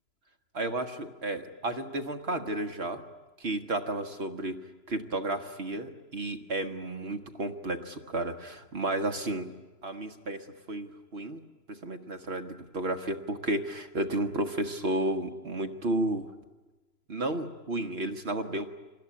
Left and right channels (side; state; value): left; late; 3.0 ms